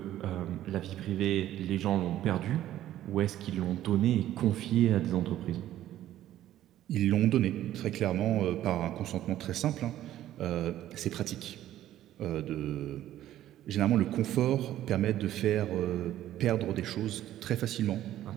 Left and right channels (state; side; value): quieter; left; 12.9 dB